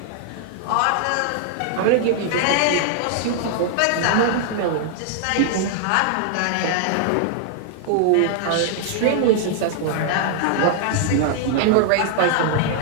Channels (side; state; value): both; different; correlation -0.01